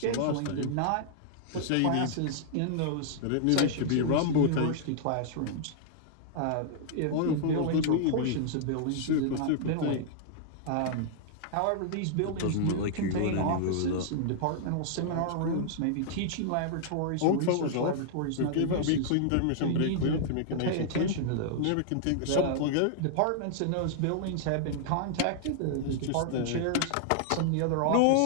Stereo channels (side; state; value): both; different; correlation -0.01